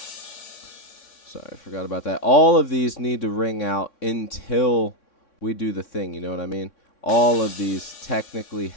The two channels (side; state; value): right; late; 3.6 ms